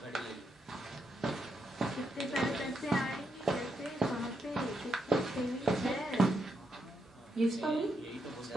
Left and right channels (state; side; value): normal; both; correlation 0.81